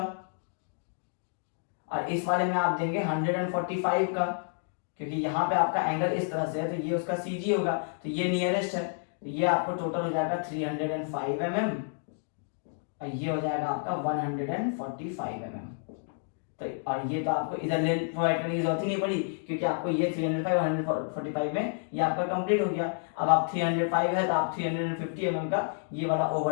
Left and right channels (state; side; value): silent; right; digital silence